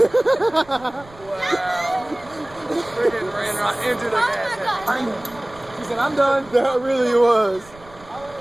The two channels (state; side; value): noise; right; rumble, 23 dB below the sound